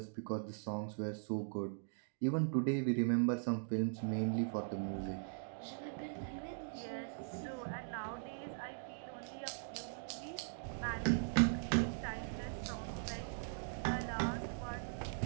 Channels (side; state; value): left; silent; digital silence